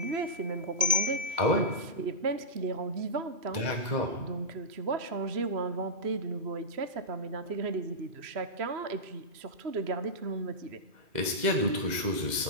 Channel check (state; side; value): late; left; 2.1 ms